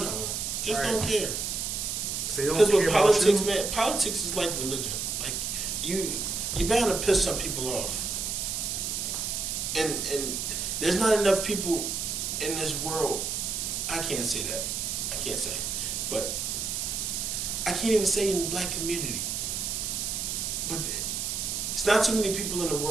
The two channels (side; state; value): right; noise; hiss, 2 dB below the sound